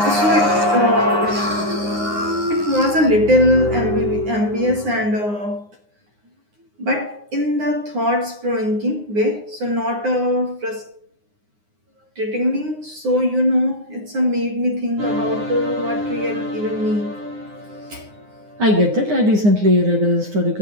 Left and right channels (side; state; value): left; late; 9.7 ms